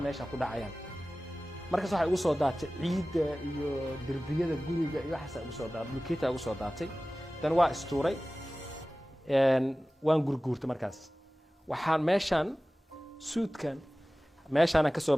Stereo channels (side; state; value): both; normal; correlation 0.97